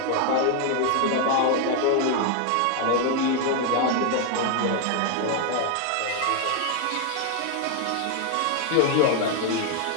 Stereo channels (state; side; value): different; both; correlation 0.01